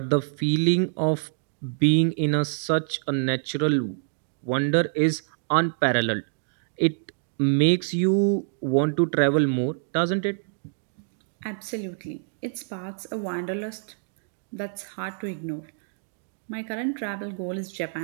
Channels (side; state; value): left; silent; digital silence